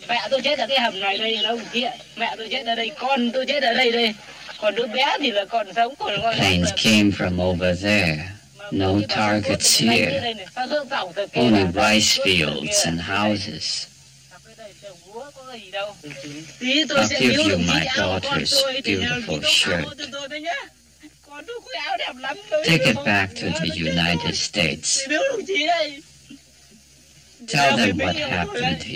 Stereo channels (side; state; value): both; identical; correlation 1.00